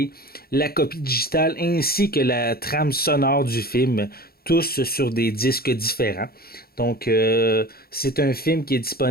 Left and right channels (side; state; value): right; late; 0.44 ms